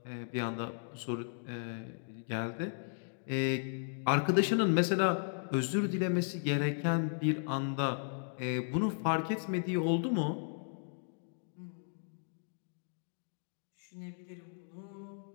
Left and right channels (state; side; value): silent; right; digital silence